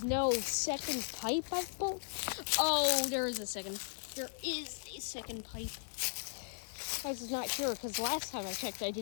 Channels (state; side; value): silent; right; 53 dB below the other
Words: no second pipe, I thought. Oh, there is a second pipe. I was not sure, because last time I checked, I